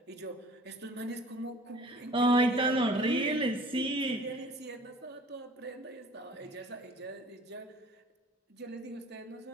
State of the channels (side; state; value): both; normal; correlation 0.49